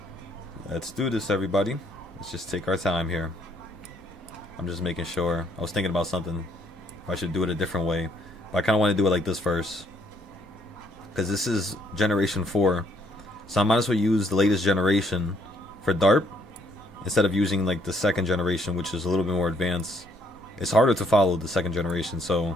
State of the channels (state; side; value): normal; both; correlation 0.68